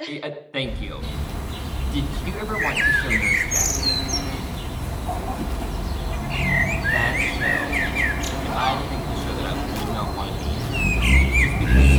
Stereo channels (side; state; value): both; identical; correlation 1.00